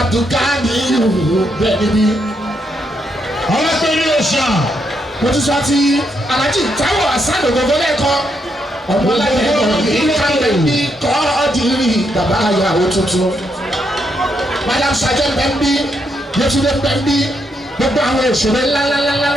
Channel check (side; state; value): both; normal; correlation 0.78